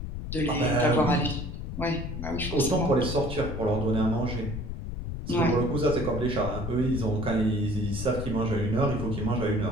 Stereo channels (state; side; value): noise; left; rumble, 6 dB below the sound